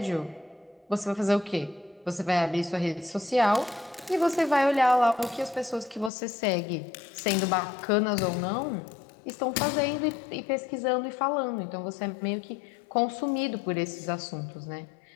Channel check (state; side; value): drops out; right; at 6.1 s